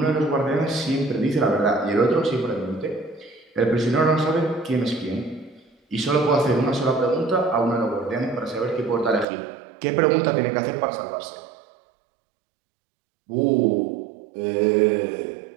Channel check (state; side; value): drops out; left; at 9.2 s